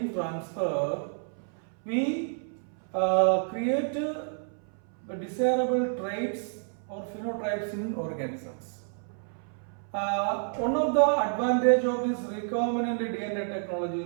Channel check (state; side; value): silent; left; 58 dB below the other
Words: transfer, we create desirable traits or phenotypes in organisms. One of the advantage of this recombinant DNA technology